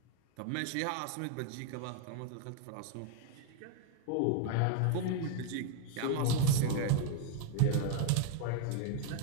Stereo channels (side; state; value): both; different; correlation 0.00